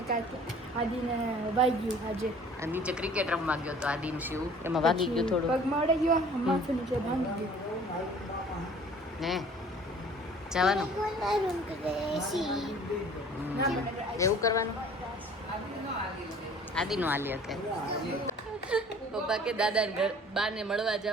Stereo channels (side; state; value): both; normal; correlation 0.50